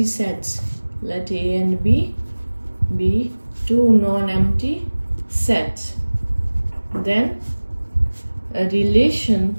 sets. Let A and B be two non-empty sets. Then a relation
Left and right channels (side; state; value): both; inverted; correlation -1.00